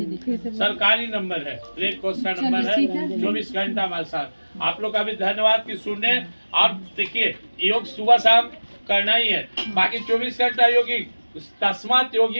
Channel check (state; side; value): inverted; both; correlation -1.00